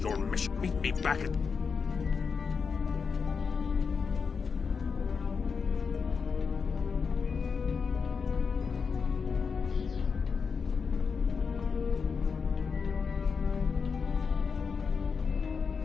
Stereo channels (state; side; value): quieter; right; 5.6 dB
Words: mission. Meet me back at...